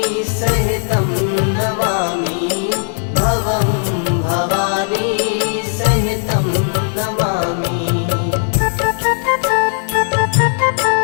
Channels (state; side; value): silent; right; digital silence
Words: सहितं नमामि भवं भवानी सहितं नमामि।